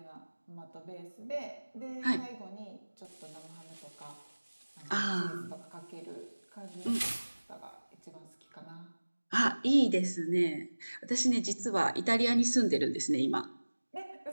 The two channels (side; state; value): both; inverted; correlation -1.00